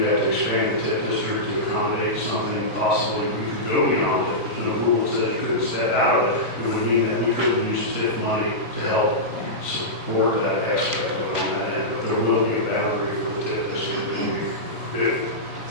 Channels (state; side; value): normal; both; correlation -0.14